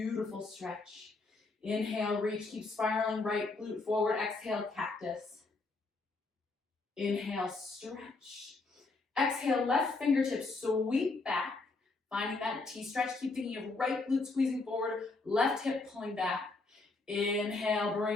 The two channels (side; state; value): right; quieter; 3.6 dB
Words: stretch. Inhale, reach, keep spiraling right glute forward. Exhale, cactus. Inhale, stretch. Exhale, left fingertips sweep back. Finding that T-stretch. Keep thinking of right glute squeezing forward, left hip pulling back. Inhale,